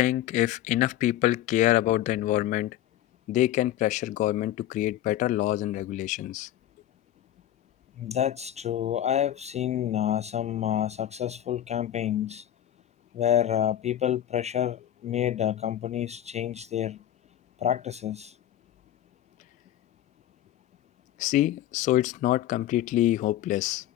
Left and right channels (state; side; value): quieter; right; 12.4 dB